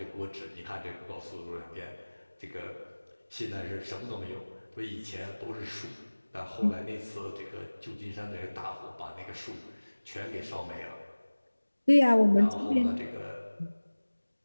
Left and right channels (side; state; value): both; inverted; correlation -1.00